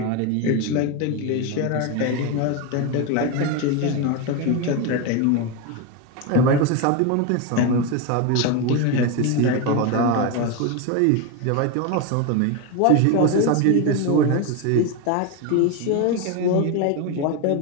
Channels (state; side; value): different; both; correlation 0.03